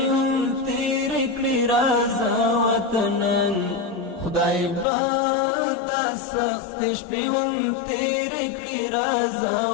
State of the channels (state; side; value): drops out; right; at 4.9 s